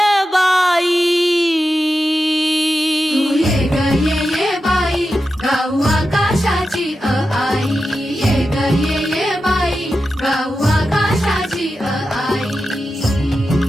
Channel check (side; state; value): both; normal; correlation 0.91